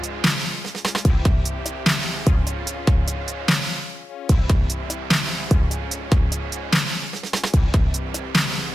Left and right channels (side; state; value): both; normal; correlation 0.93